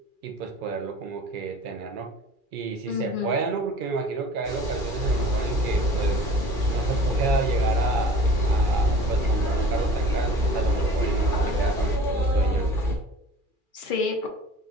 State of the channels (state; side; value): late; left; 2.4 ms